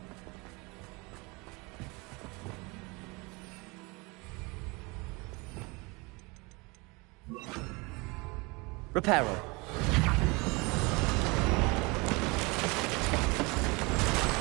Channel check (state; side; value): quieter; left; 26.7 dB